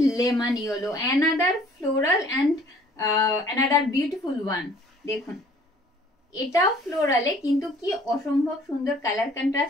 lemon yellow, another floral and another beautiful one. দেখুন এটাও ফ্লোরালে, কিন্তু কি অসম্ভব সুন্দর কালার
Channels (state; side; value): normal; both; correlation 0.55